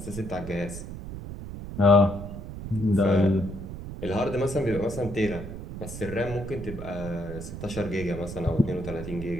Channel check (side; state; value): right; noise; rumble, 9 dB below the sound